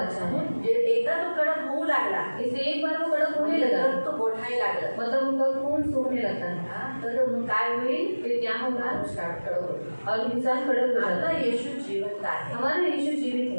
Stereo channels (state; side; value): inverted; both; correlation -1.00